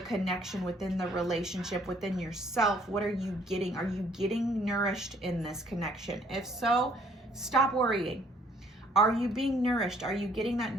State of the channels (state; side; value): normal; both; correlation 0.61